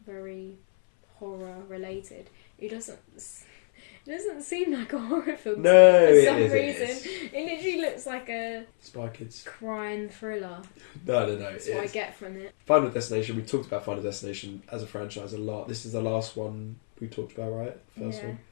very horror related, it doesn't. It doesn't seem like a horror film No, for it some is, reason. It literally looks like a Spy Kids crime thriller. No. That's what I get from it. Final Destination. We talked about Final Destination as a franchise a lot. This is the last one we talked about, right? First one.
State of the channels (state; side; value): silent; right; 60 dB below the other